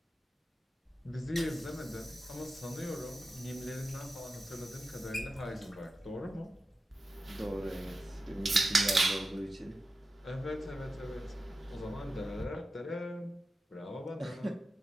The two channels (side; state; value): both; normal; correlation 0.91